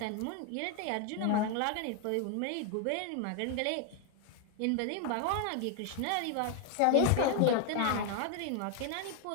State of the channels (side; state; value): both; different; correlation 0.01